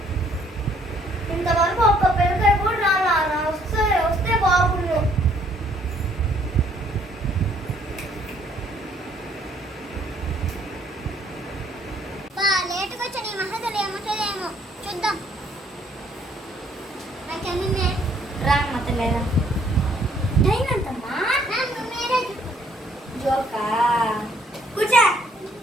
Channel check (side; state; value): both; normal; correlation 0.64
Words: ఇంతవరకు ఒక్క పిల్లకాయ కూడా రాలా. వస్తే బాగుండు. లేటుగా వచ్చా నీ మహదలు ఏముంటుందేమో చూద్దాం. రామ్మతలేదా టైం ఎంతమ్మా? జోకా కూర్చో.